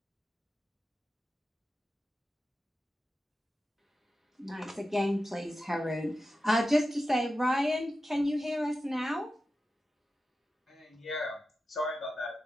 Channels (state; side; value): normal; both; correlation 0.92